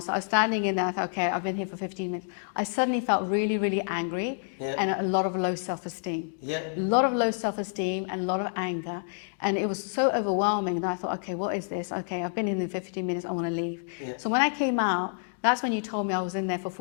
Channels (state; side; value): silent; right; digital silence